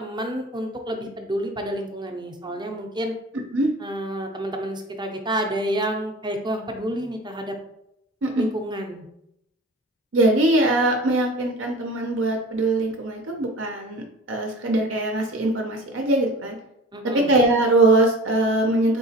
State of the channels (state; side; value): normal; both; correlation 0.39